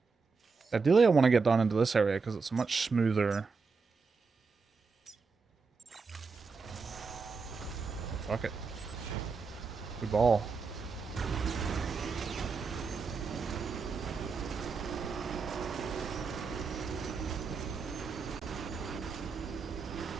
Ideally, I want to get down into this area because it's a much smoother. Fuck it. We ball.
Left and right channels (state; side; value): quieter; left; 4.8 dB